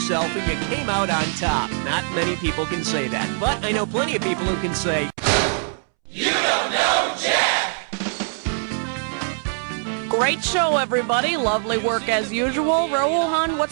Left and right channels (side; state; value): left; silent; 64 dB below the other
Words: and you came out on top. Not many people can say that, but I know plenty of people who can say, "You don't know Jack!" Great show, everybody. Lovely work as usual. Rohan,